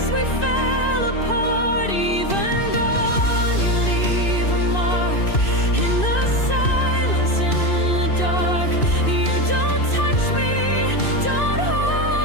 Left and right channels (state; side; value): late; right; 2.6 ms